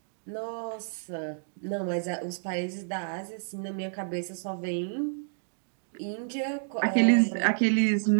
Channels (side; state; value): left; silent; digital silence